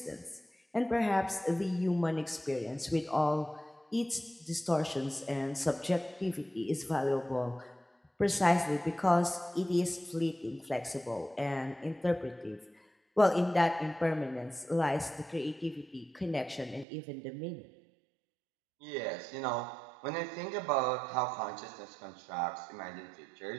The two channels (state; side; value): drops out; left; at 16.9 s